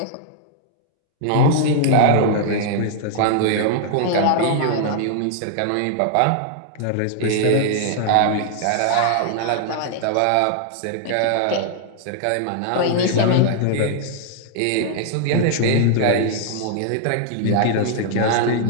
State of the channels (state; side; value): different; both; correlation -0.01